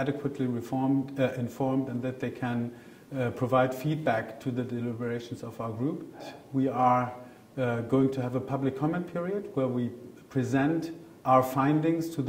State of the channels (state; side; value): identical; both; correlation 1.00